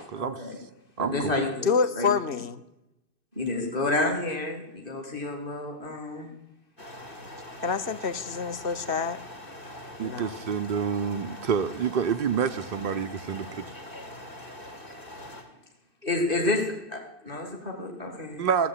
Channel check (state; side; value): late; left; 2.6 ms